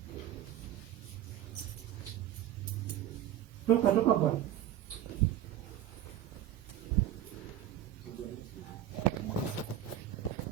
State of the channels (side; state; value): left; quieter; 11.6 dB